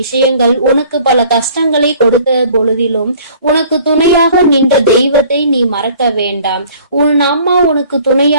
விஷயங்கள் உனக்கு பல கஷ்டங்களை கொடுத்த பொழுதிலும் உனக்கு துணையாக நின்ற தெய்வத்தை நீ மறக்க வேண்டாம். உன் அம்மா உனக்கு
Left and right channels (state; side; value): inverted; both; correlation -0.52